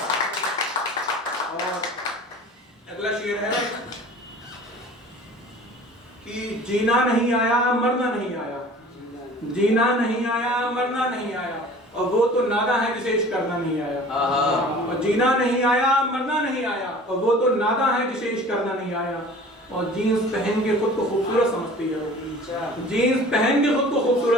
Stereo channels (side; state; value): both; normal; correlation 0.44